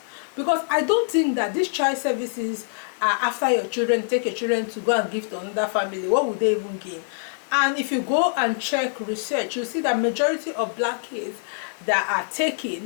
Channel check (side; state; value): right; silent; digital silence